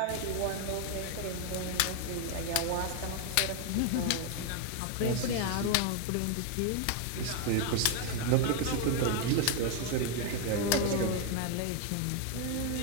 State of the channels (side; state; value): both; different; correlation 0.01